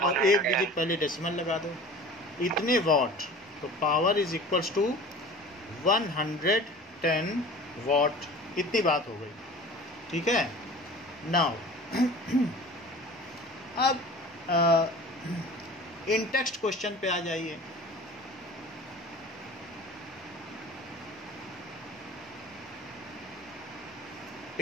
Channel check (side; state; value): both; normal; correlation 0.41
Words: एक डिजिट पहले डेसिमल लगा दो, इतने वॉट। तो power is equals to 110 watt. इतनी बात हो गई, ठीक है। नाउ अब इन टेक्स्ट क्वेश्चन पे आ जाइए।